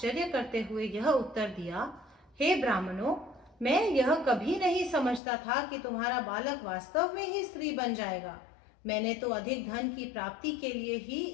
करते हुए यह उत्तर दिया, हे ब्राह्मणों, मैं यह कभी नहीं समझता था कि तुम्हारा बालक वास्तव में ही स्त्री बन जाएगा। मैंने तो अधिक धन की प्राप्ति के लिए ही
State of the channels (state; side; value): drops out; right; at 5.2 s